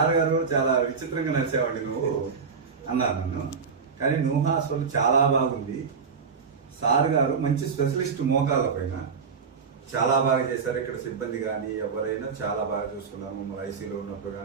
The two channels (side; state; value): left; quieter; 5.6 dB